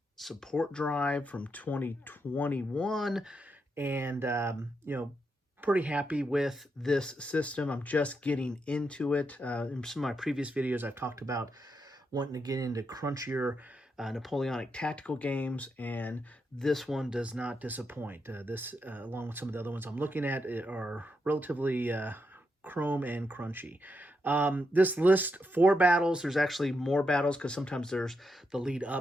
support drive from 2021, and pretty happy with this system. I'm just getting into it. In some of my previous videos, I've talked about wanting to get into crunchier Napoleonic tactical games, and this one does not disappoint. This, along with some of the other ones I'm looking at, are relatively chrome and crunchy. This lists 4 battles. There's actually more battles because sometimes there's the lead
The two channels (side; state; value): both; normal; correlation 0.83